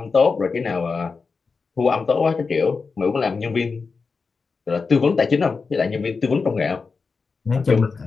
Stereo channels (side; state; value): right; quieter; 4.7 dB